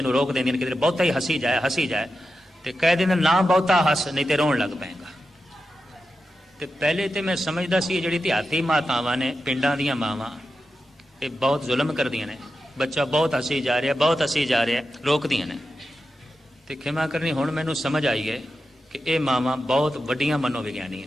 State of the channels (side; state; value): both; normal; correlation 0.90